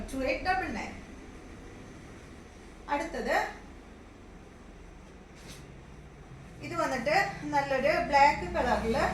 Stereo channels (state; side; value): identical; both; correlation 1.00